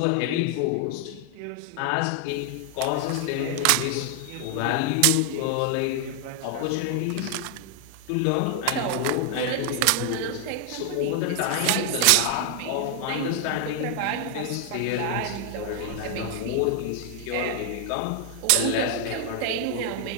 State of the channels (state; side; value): different; both; correlation 0.00